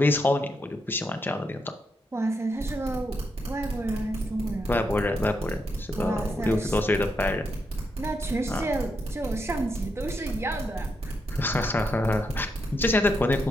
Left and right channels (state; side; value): normal; both; correlation 0.81